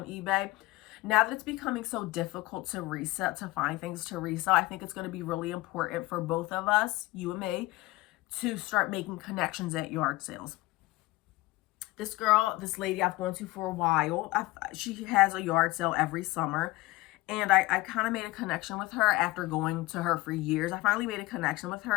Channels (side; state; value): right; quieter; 19.9 dB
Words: eBay. Now that it's becoming so difficult to resell, to find things to resell, I think it's going to be really important for both of us, you and me, to start making connections at yard sales. This lady I've gone to for a while, she has a yard sale every summer. And I kind of made a connection with her after going to her for years. I finally made a connection with her